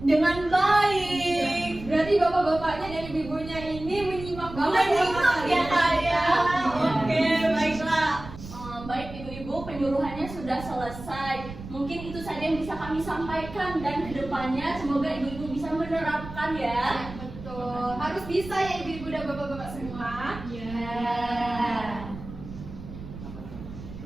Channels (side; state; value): right; noise; rumble, 13 dB below the sound